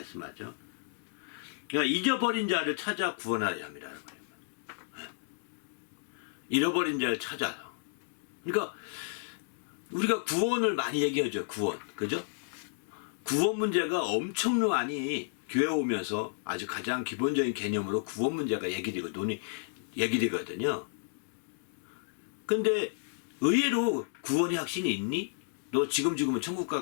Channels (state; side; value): silent; right; digital silence